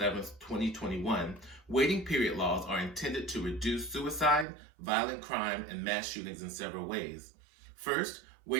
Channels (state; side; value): drops out; left; at 4.5 s